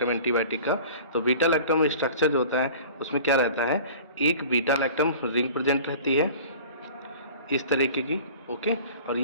एंटीबायोटिक का। तो बीटा लैक्टम स्ट्रक्चर जो होता है उसमें क्या रहता है, एक बीटा लैक्टम रिंग प्रेजेंट रहती है इस तरीके की। ओके, और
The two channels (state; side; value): inverted; both; correlation -0.42